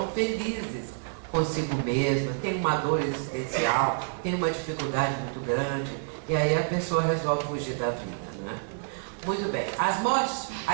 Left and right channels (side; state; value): left; silent; 59 dB below the other